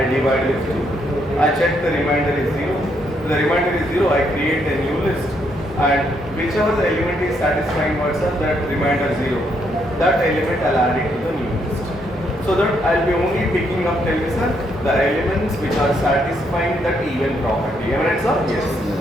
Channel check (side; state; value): both; normal; correlation 0.74